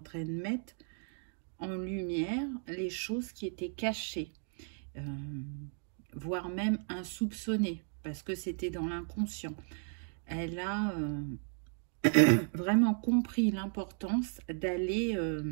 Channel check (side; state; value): left; silent; 55 dB below the other